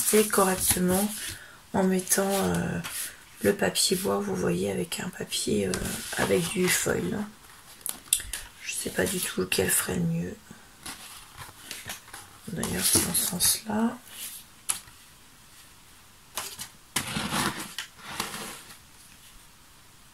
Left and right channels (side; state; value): both; identical; correlation 1.00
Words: correctement en mettant le papier bois, vous voyez, avec un papier avec du foil. Je sais pas du tout lequel ferait le mieux. D'ailleurs c'est dans ce sens-là.